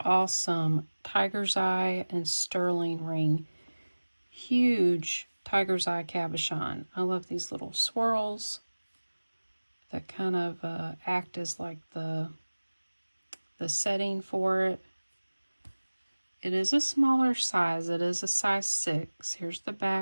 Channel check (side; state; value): both; inverted; correlation -1.00